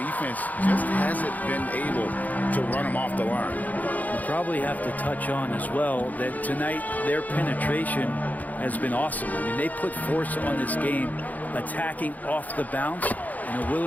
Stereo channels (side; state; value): right; late; 0.079 ms